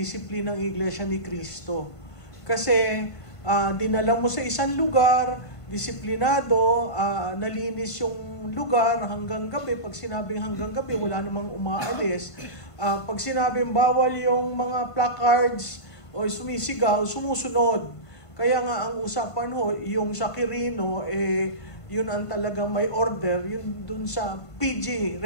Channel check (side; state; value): right; late; 1.5 ms